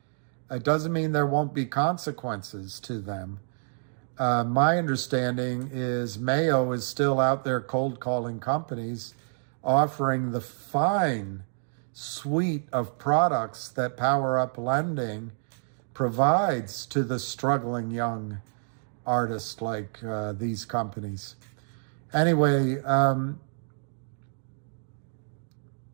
It doesn't mean there won't be consequences to them. My understanding is Mayo is still out there cold calling companies, offering the fine suite of products that Power Up Lending provides to the struggling young artists like these companies. Anyway,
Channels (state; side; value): silent; left; digital silence